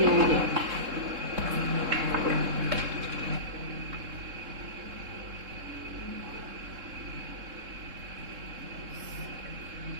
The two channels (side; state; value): left; late; 3.7 ms